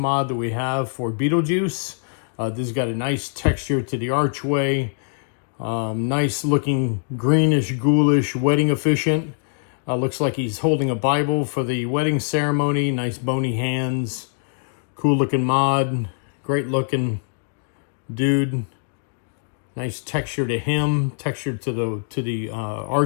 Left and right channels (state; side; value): silent; right; digital silence